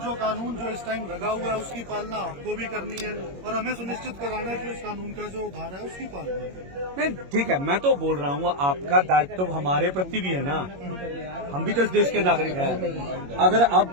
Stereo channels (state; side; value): late; left; 21 ms